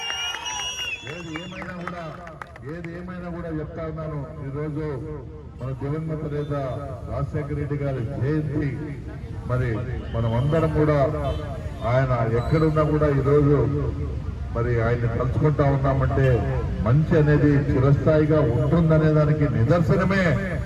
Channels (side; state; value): both; identical; correlation 1.00